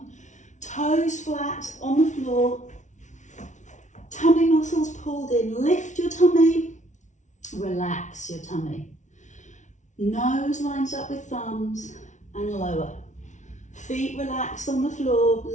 Toes flat on the floor. Tummy muscles pulled in. Lift your tummy. Relax your tummy. Nose lines up with thumbs and lower. Feet relaxed on the floor.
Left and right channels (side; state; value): right; late; 0.36 ms